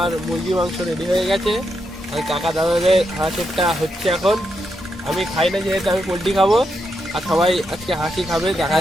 মুরগি মাংস রেডি হয়ে গেছে। আর কাকা দাদাদের হাঁসেরটা হচ্ছে এখন। আমি খাই না যেহেতু, আমি পোলট্রি খাবো। আর সবাই আজকে হাসি খাবে, দেখা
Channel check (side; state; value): both; normal; correlation 0.82